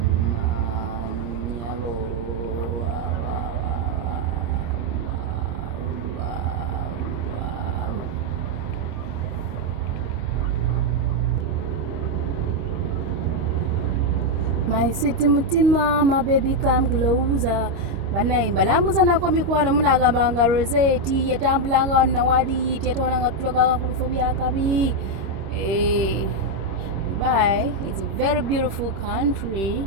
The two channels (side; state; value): left; late; 25 ms